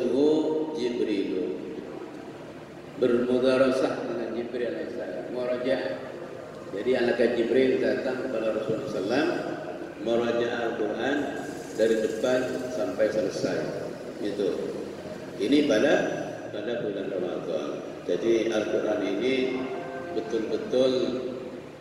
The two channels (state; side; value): identical; both; correlation 1.00